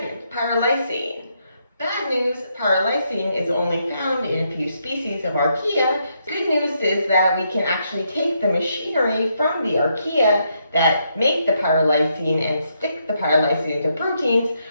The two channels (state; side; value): inverted; both; correlation -0.78